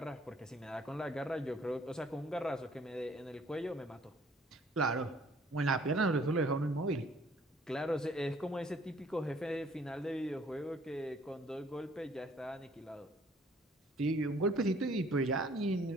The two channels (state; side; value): normal; both; correlation 0.59